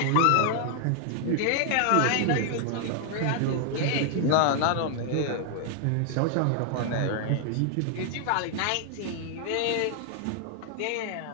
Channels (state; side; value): different; both; correlation 0.00